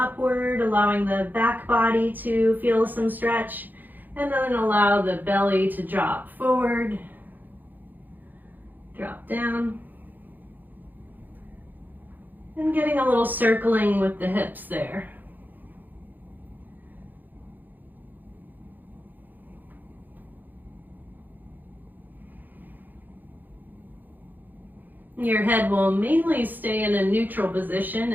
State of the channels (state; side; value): late; left; 0.086 ms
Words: allowing the back body to feel some stretch, and then allow the belly to drop forward, drop down. And getting a little circling with the hips there. Your head will mainly stay in a neutral position.